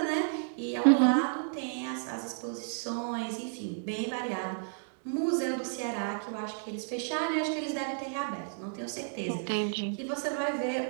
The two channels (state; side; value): silent; left; digital silence